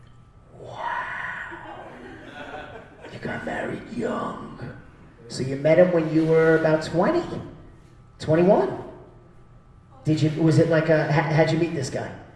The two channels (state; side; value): identical; both; correlation 1.00